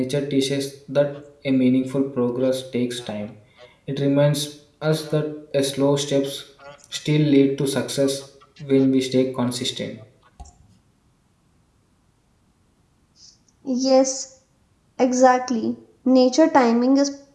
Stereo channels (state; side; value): identical; both; correlation 1.00